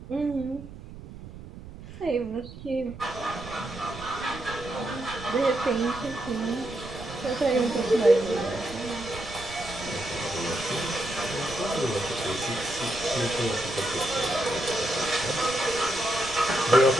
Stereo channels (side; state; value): right; noise; rumble, 14 dB below the sound